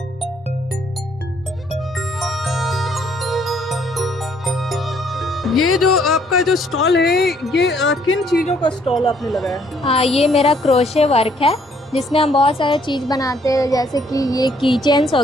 ये जो आपका जो स्टॉल है, ये किन चीज़ों का स्टॉल आपने लगाया है? हाँ, ये मेरा क्रोशे वर्क है जिसमें हम बहुत सारे चीज़ बनाते हैं, जैसे कि ये की चेन्स हो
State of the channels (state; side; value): normal; both; correlation 0.66